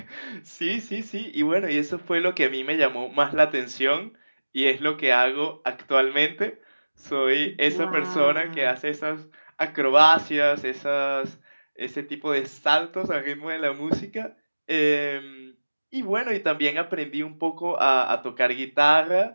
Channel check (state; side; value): inverted; both; correlation -1.00